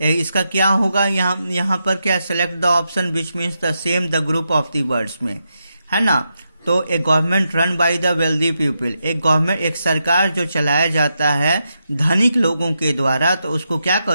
इसका क्या होगा, यहाँ पर क्या, select the option which means the same the group of the words में, है ना। तो एक government run by the wealthy people, एक सरकार जो चलाया जाता है धनिक लोगों के द्वारा, तो उसको क्या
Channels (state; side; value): inverted; both; correlation -0.85